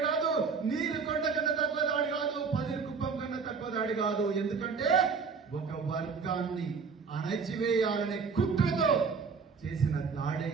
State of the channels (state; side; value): quieter; left; 5.3 dB